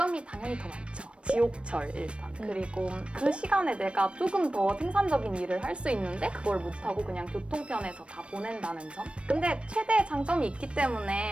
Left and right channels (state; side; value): late; left; 0.059 ms